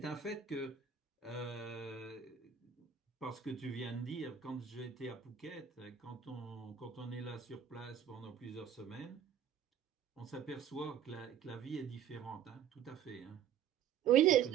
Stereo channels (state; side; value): quieter; left; 8.7 dB